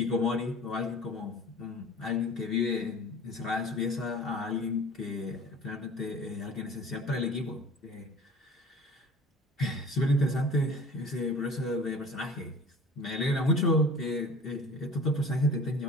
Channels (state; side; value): normal; both; correlation 0.43